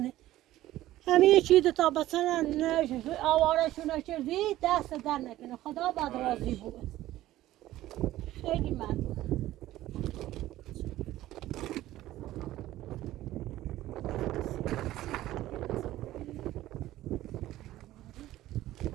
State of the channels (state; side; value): quieter; left; 15.0 dB